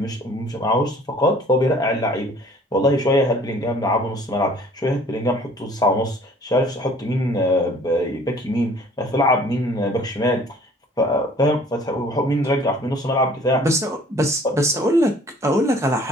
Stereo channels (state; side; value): normal; both; correlation 0.53